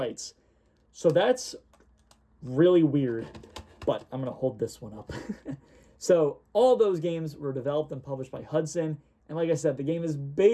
So that's really weird, but I'm going to hold this one up. So all those games were developed and published by Hudson, and like I said, the game is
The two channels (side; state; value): both; identical; correlation 1.00